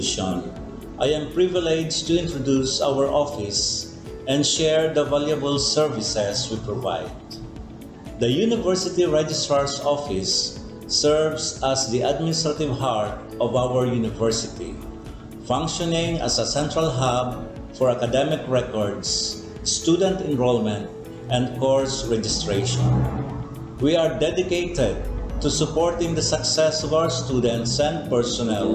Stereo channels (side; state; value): both; identical; correlation 1.00